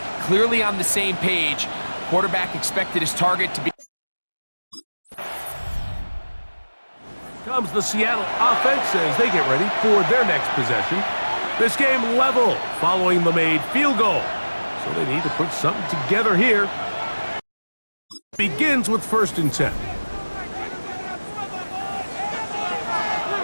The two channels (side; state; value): both; inverted; correlation -1.00